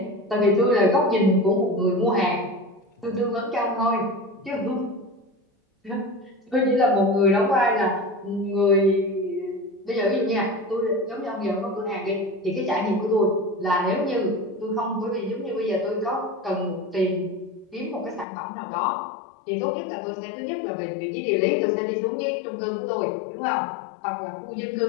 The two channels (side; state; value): right; drops out; at 18.2 s